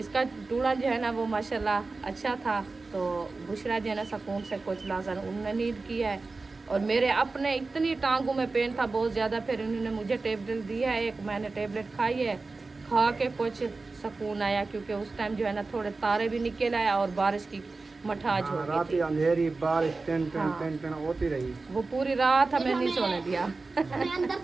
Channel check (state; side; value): quieter; left; 3.7 dB